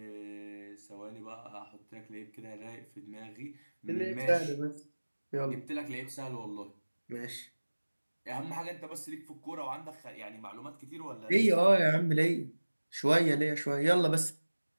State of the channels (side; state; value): both; inverted; correlation -1.00